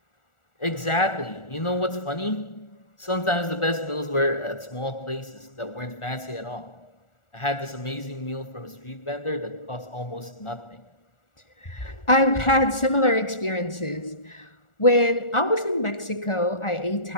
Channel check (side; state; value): right; late; 1.4 ms